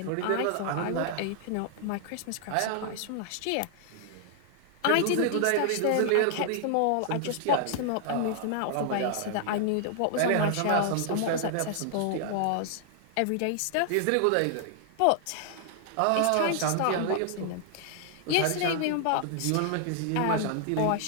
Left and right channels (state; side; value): different; both; correlation -0.01